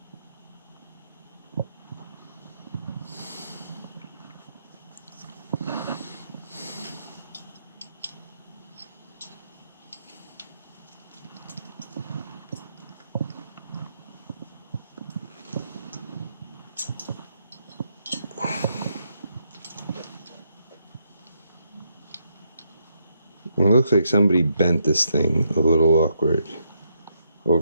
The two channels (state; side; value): inverted; both; correlation -0.77